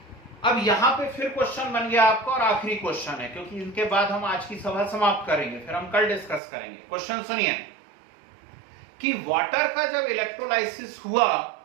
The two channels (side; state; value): left; drops out; at 6.4 s